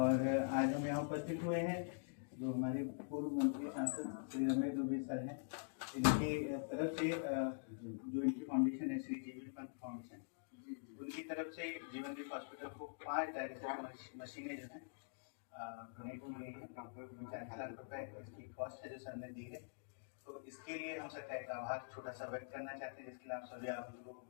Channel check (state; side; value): silent; right; digital silence